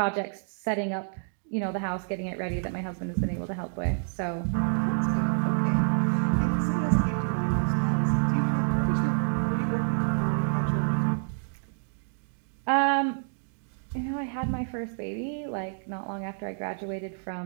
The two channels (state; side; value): silent; left; digital silence